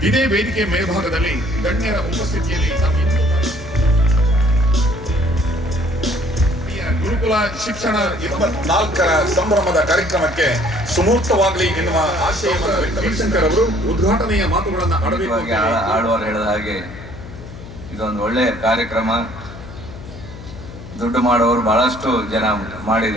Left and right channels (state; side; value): noise; left; hum, 14 dB below the sound